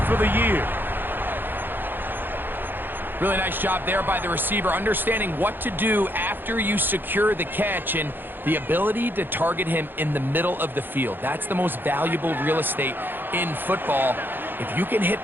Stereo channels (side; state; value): left; late; 0.096 ms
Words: for the year. Really nice job there by the receiver, understanding what to do after you secure the catch and the ability to target him in the middle of the field. That's the most valuable real estate in football. If you can hit